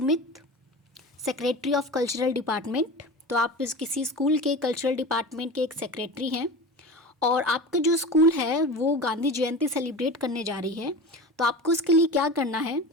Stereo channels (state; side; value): normal; both; correlation 0.31